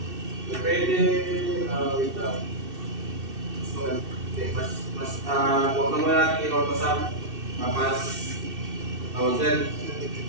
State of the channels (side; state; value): left; late; 2.6 ms